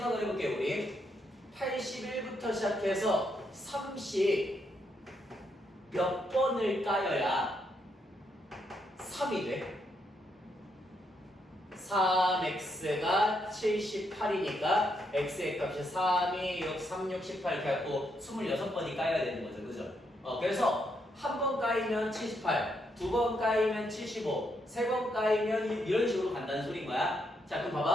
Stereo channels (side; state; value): both; normal; correlation 0.78